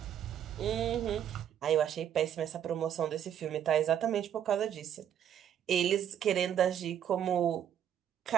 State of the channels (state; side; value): quieter; left; 9.8 dB